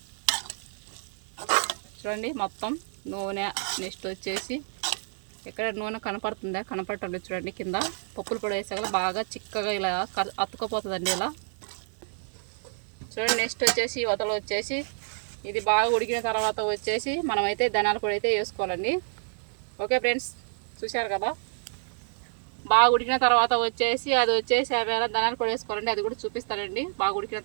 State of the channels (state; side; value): silent; left; 59 dB below the other